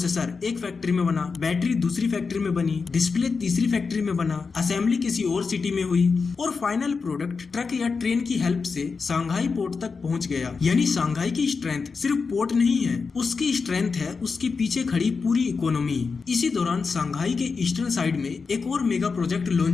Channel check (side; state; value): right; quieter; 4.9 dB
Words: एक फैक्ट्री में बना, बैटरी दूसरी फैक्ट्री में बनी, डिस्प्ले तीसरी फैक्ट्री में बना, असेंबली किसी और सिटी में हुई और फाइनल प्रोडक्ट ट्रक या ट्रेन की हेल्प से शंघाई पोर्ट तक पहुंच गया। यानी शंघाई की स्ट्रेंथ सिर्फ पोर्ट नहीं है, उसकी स्ट्रेंथ है उसके पीछे खड़ी पूरी इकोनॉमी। इसी दौरान शंघाई के ईस्टर्न साइड में एक और मेगा प्रोजेक्ट